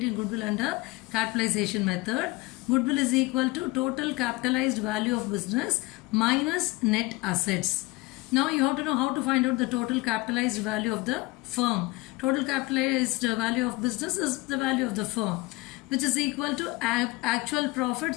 goodwill under capitalization method. Goodwill is equal to total capitalized value of business minus net assets. Now you have to know how to find out the total capitalized value of the firm. Total capitalized value of business is the value of the firm, which is equal to actual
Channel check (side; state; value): right; quieter; 22.6 dB